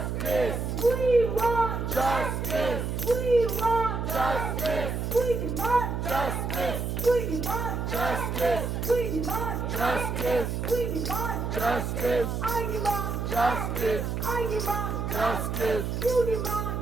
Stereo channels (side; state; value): right; noise; hum, 2 dB below the sound